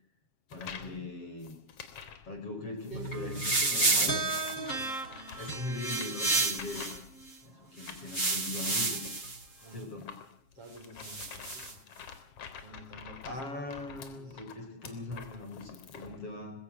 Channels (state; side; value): late; right; 7.4 ms